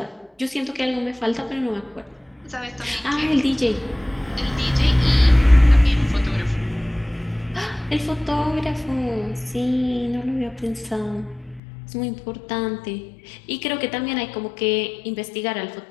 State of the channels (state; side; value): drops out; right; at 11.6 s